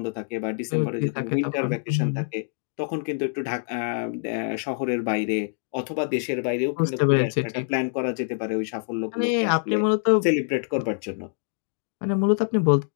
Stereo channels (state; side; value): silent; right; 58 dB below the other